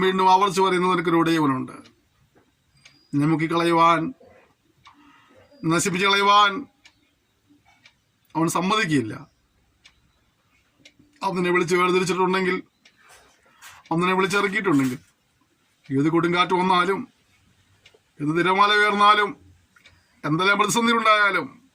വീണ്ടും ആവർത്തിച്ച് പറയുന്നത് എനിക്കൊരു ഉടയവനുണ്ട്. എന്നെ മുക്കിക്കളയുവാൻ, നശിപ്പിച്ച് കളയുവാൻ അവൻ സമ്മതിക്കില്ല. അവനെ വിളിച്ച് വേർതിരിച്ചിട്ടുണ്ടെങ്കിൽ, അവനെ വിളിച്ചിറക്കിയിട്ടുണ്ടെങ്കിൽ, ഏത് കൊടുങ്കാറ്റ് വന്നാലും, ഏത് തിരമാല ഉയർന്നാലും, എന്തെല്ലാം പ്രതിസന്ധി ഉണ്ടായാലും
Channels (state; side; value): identical; both; correlation 1.00